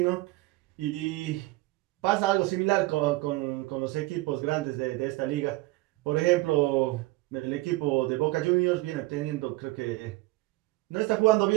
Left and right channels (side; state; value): left; quieter; 20.5 dB